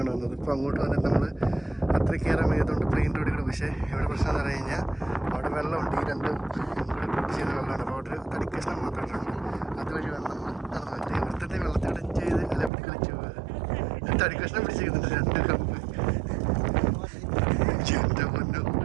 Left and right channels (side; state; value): left; drops out; at 12.7 s